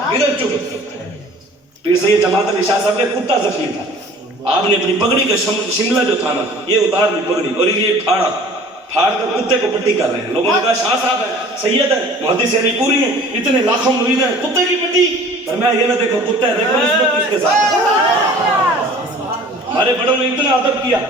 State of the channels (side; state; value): both; normal; correlation 0.47